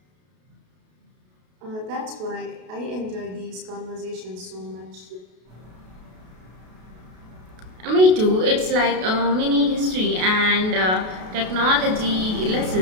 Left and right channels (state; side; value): late; left; 33 ms